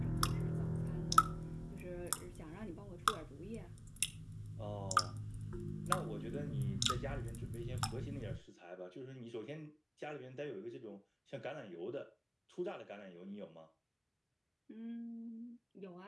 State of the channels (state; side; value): identical; both; correlation 1.00